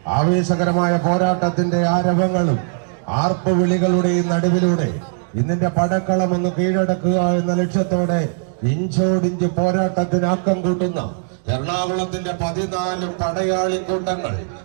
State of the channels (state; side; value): silent; left; digital silence